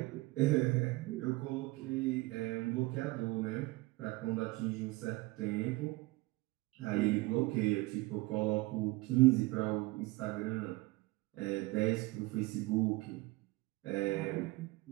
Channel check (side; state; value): left; quieter; 21.1 dB